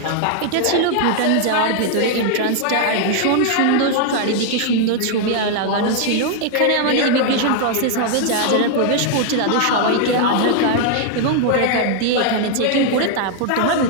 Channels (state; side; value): different; both; correlation 0.00